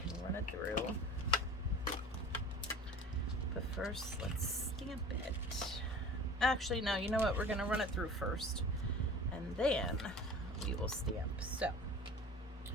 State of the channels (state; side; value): normal; both; correlation 0.40